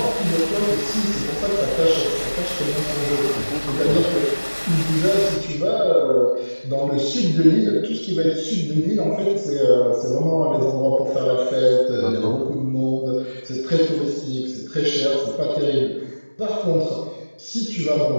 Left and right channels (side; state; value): both; inverted; correlation -1.00